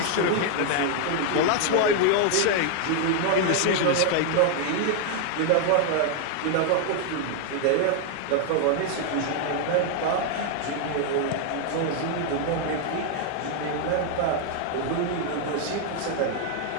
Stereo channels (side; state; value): both; different; correlation 0.00